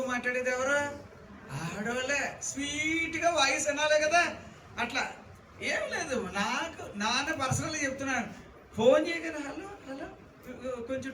మాట్లాడేది ఎవరు? ఆడవాళ్ళే. స్వీట్గా వాయిస్ అనాలే కదా. అట్లా ఏం లేదు, నాన్న పర్సనల్గా చెప్తున్నాను. ఫోన్ చేయగలరు, హలో హలో కొంచెం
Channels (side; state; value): both; identical; correlation 1.00